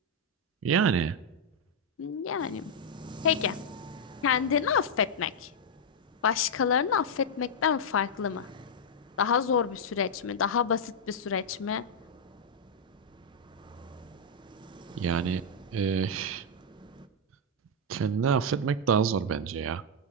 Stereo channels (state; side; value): normal; both; correlation -0.03